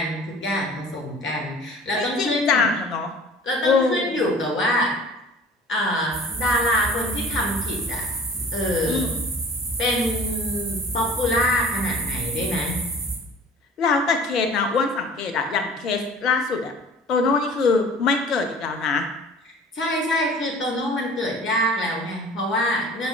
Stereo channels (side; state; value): both; normal; correlation 0.45